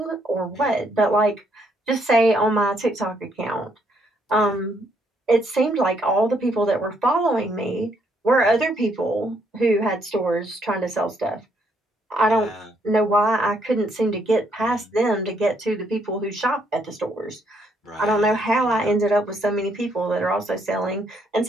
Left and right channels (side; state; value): both; normal; correlation 0.71